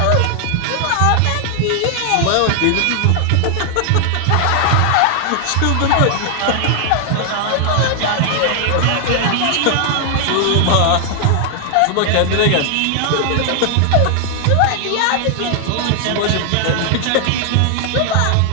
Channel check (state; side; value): different; both; correlation 0.00